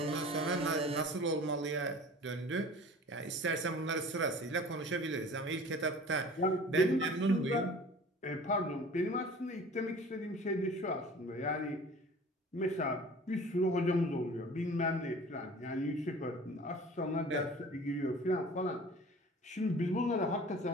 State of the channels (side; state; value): both; normal; correlation 0.43